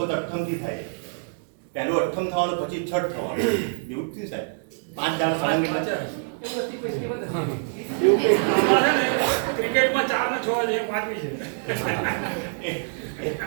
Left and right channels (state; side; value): silent; left; digital silence